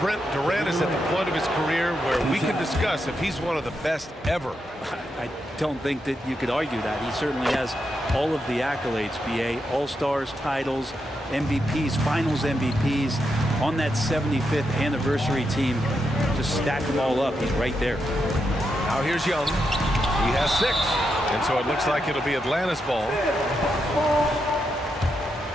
Brent, Durant is at the point of his career where we can discuss if he's one of the best ever. I don't think that you could argue that. He certainly has all of the accolades, BA. All-Stars, titles, MVPs, Finals MVPs. On that 75th anniversary team, just stack them all up. He's right there. Now here's Young. He has 6. And so it looks like it'll be Atlanta's ball.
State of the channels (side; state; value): both; normal; correlation 0.84